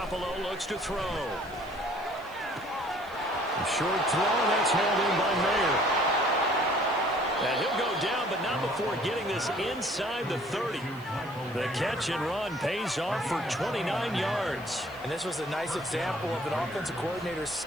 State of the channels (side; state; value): left; noise; hiss, 25 dB below the sound